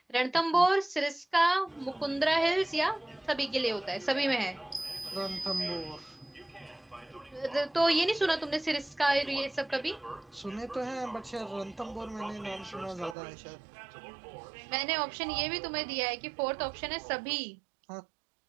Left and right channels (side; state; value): left; drops out; at 13.2 s